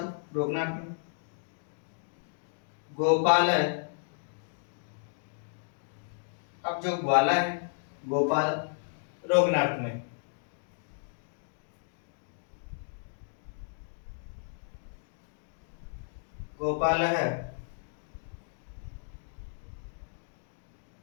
रोकना अर्थ में। गोपाल है। अब जो ग्वाला है गोपाल रोगनार्थ में। गोपाल है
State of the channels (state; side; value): silent; right; digital silence